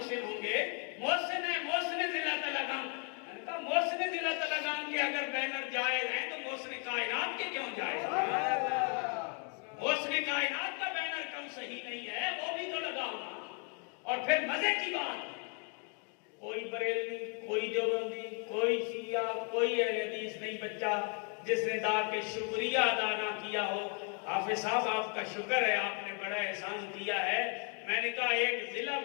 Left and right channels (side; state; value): right; quieter; 39.3 dB